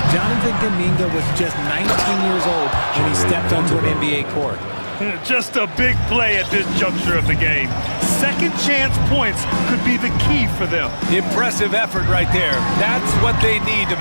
Jonathan Kuminga was just 19 years old when he stepped onto an NBA court. Just a big play at this juncture of the game. Second chance points could be the key for them. Impressive effort right there. That's what they need to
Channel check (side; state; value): both; inverted; correlation -1.00